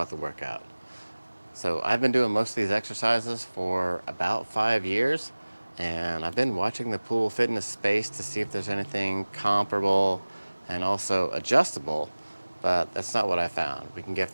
the workout. So I've been doing most of these exercises for about 5 years, and I've been watching the pool fitness space to see if there's anything comparable and also adjustable, but that's not what I found. We can get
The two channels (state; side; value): inverted; both; correlation -1.00